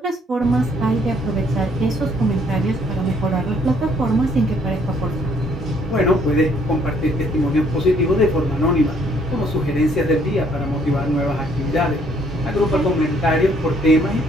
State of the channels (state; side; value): normal; both; correlation 0.64